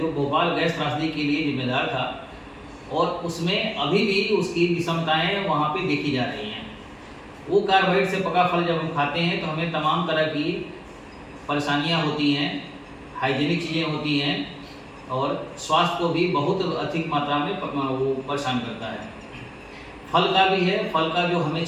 भोपाल गैस त्रासदी के लिए जिम्मेदार था और उसमें अभी भी उसकी विषमताएं वहाँ पे देखी जा रही हैं। वो कार्बाइड से पका फल जब हम खाते हैं तो हमें तमाम तरह की परेशानियाँ होती हैं, हाइजीनिक चीज़ें होती हैं और स्वास्थ्य को भी बहुत अधिक मात्रा में वो परेशान करता है। फल का भी है, फल का जो हमें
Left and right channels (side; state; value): both; identical; correlation 1.00